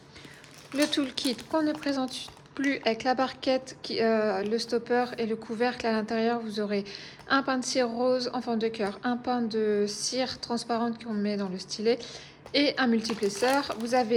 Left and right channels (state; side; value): identical; both; correlation 1.00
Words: Le toolkit qu'on ne présente plus avec la barquette, le stopper et le couvercle. À l'intérieur, vous aurez un pain de cire rose en forme de cœur, un pain de cire transparente qu'on met dans le stylet et un multiplesseur. Vous